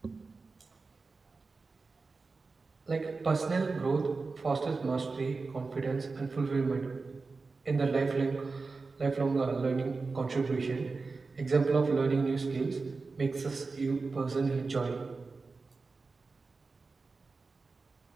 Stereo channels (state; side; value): quieter; left; 4.1 dB